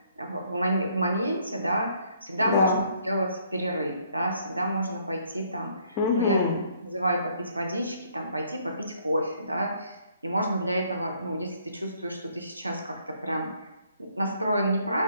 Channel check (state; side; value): inverted; both; correlation -0.66